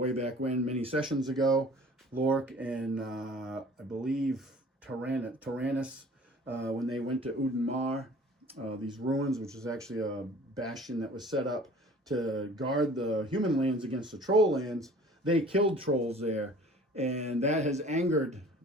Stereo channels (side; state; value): both; normal; correlation 0.48